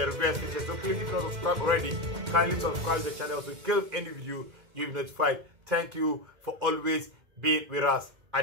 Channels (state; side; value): late; left; 2.1 ms